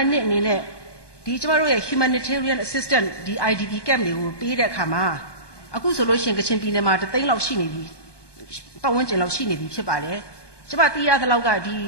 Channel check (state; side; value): late; right; 1.2 ms